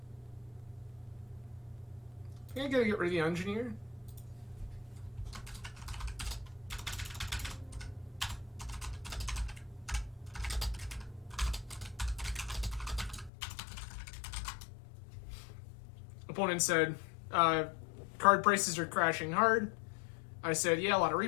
I think I gotta get rid of the Engineer. Opponent said, card prices are crashing hard. I said, yeah, a lot of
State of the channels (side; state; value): right; drops out; at 13.3 s